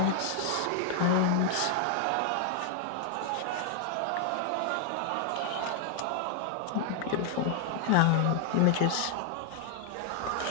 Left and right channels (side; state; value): both; different; correlation 0.00